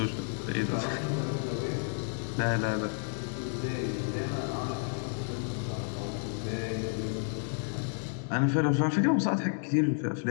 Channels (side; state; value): right; silent; 57 dB below the other